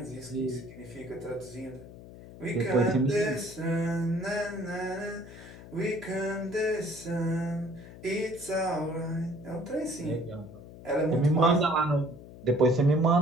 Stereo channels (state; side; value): noise; left; hum, 16 dB below the sound